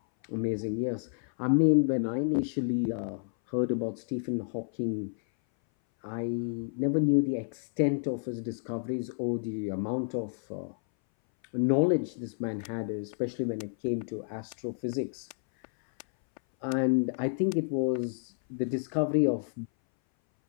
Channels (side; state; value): right; silent; 58 dB below the other